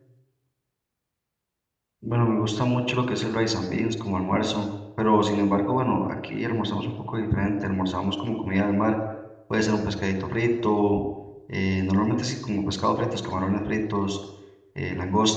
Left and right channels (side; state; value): both; identical; correlation 1.00